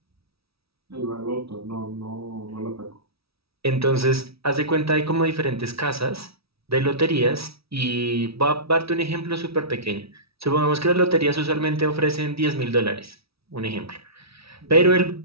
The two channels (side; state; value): left; late; 0.76 ms